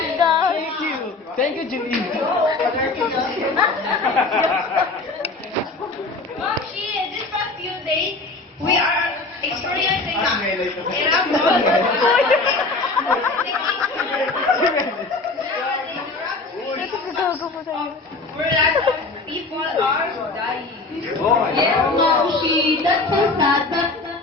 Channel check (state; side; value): quieter; right; 3.5 dB